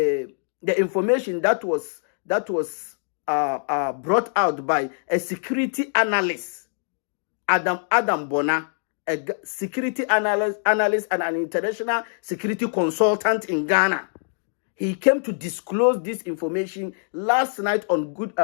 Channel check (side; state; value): right; silent; digital silence